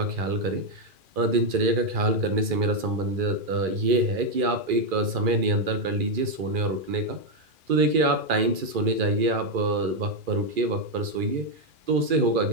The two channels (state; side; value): late; left; 2.4 ms